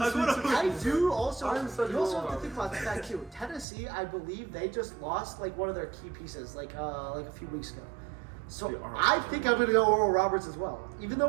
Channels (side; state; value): left; drops out; at 3.7 s